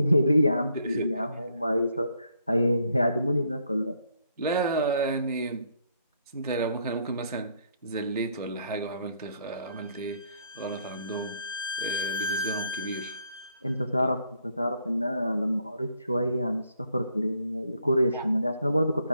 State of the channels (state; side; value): inverted; both; correlation -0.71